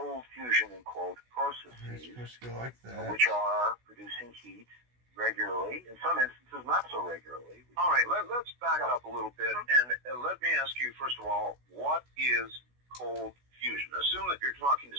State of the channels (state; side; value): late; left; 16 ms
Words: fusion, in quote, processes which are producing heat regularly, in some instances not so regularly. All right, let's back up a little bit, and let me ask you, first of all, what is cold fusion? Assume that you're talking to